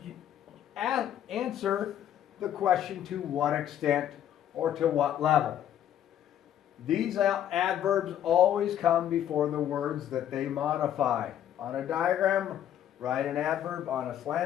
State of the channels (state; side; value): quieter; right; 10.7 dB